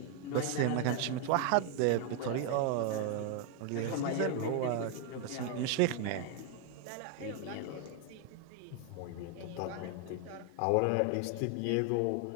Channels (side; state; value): both; different; correlation 0.01